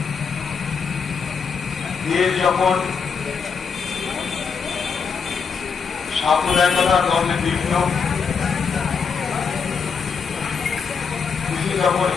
দেশ যখন সাম্প্রদায়িকতার দ্বন্দ্বে বিঘ্ন, দেশে যখন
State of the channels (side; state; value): right; quieter; 5.9 dB